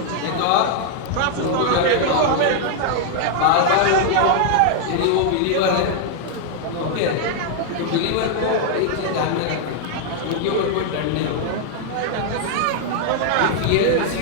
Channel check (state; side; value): different; both; correlation 0.00